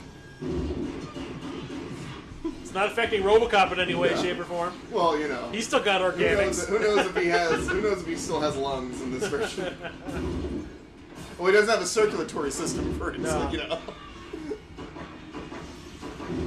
It's not affecting RoboCop in any way, shape, or form. Well, He's still got organics. Who knows if he still has lungs in this version? Well, he doesn't have a circulatory system for it, so.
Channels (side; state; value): both; identical; correlation 1.00